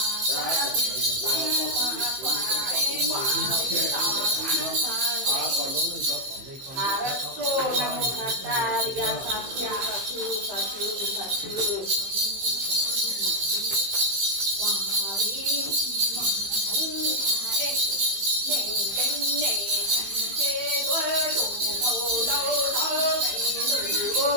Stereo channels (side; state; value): left; late; 15 ms